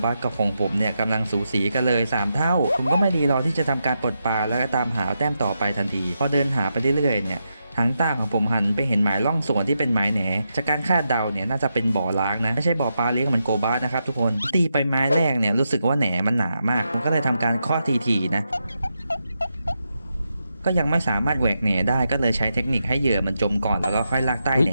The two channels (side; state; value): both; inverted; correlation -0.85